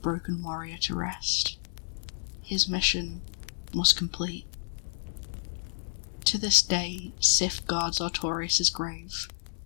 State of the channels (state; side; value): silent; right; 58 dB below the other